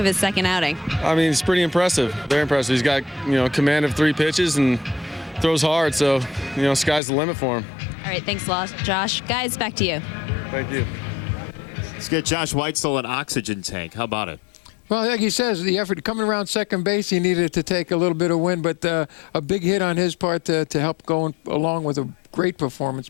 his second outing? I mean, it's pretty impressive, very impressive. He's got, command of 3 pitches and throws hard, so, sky's the limit for him. All right, thanks a lot, Josh. Guys, back to you. Thank you. Let's get Josh Weitzel an oxygen tank. How about it? Well, like he says, the effort coming around second base, he needed to take a little bit of wind, but a big hit on his part to help going along with a great performance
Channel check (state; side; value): drops out; right; at 7.0 s